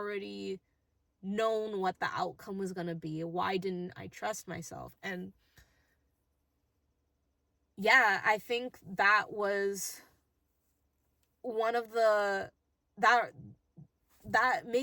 known what the outcome was going to be? Why didn't I trust myself? And yeah, I think that was one of that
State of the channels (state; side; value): identical; both; correlation 1.00